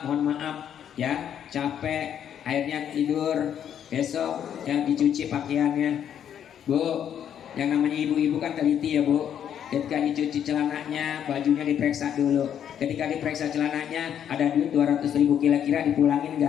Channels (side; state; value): right; quieter; 9.3 dB